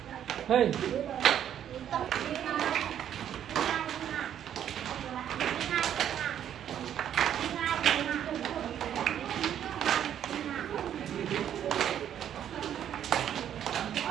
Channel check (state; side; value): quieter; left; 10.0 dB